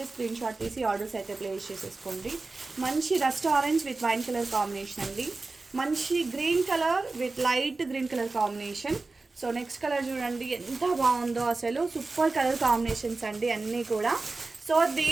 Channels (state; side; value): quieter; left; 3.6 dB